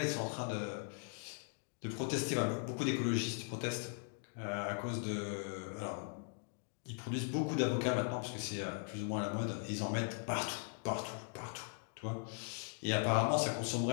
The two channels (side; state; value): right; silent; 51 dB below the other